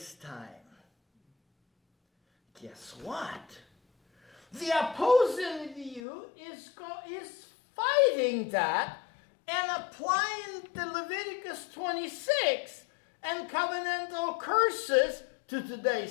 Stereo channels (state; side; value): drops out; right; at 6.0 s